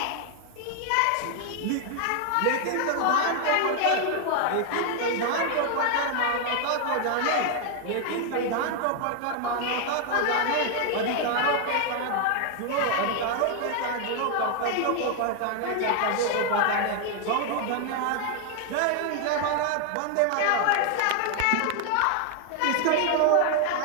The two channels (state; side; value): different; both; correlation 0.00